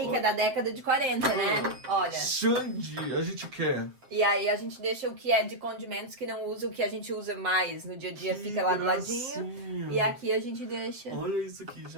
que é da década de 40, né? Olha. Xande, a gente quer. E aí a gente deixa o que é de condimentos que não usa, o que a gente usa mais no dia a dia Que fica lá do gracinha. ladinho. E aqui a gente deixa. Olha isso aqui,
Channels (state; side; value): late; left; 7.5 ms